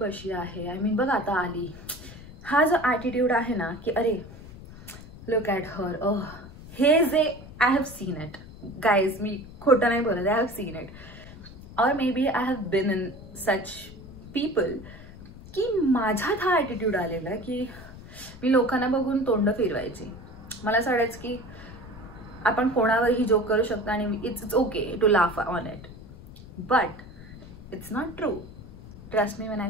अशी आहे, आय मीन बघ आता आली, हा जो ॲटिट्यूड आहे ना की अरे लुक ॲट हर, हे जे I have seen it guys, मी खोटं नाही बोलत, आय हॅव सीन इट. और maybe I have been in such people की माझ्यात हा ॲटिट्यूड आलेला की मी लोकांना बघून तोंड फिरवायची. मला असं वाटायचं की आपण कोणावरही जोक करू शकतो आणि it's okay to laugh on it, but it's not true. Trust me when I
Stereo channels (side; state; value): left; noise; rumble, 16 dB below the sound